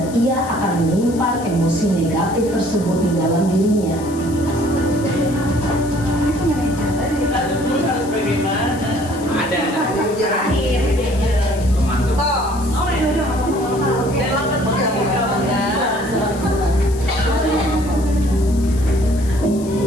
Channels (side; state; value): left; noise; hiss, 18 dB below the sound